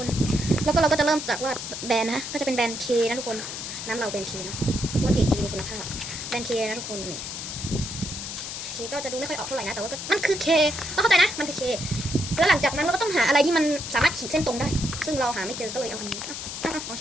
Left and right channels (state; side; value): noise; left; hiss, 7 dB below the sound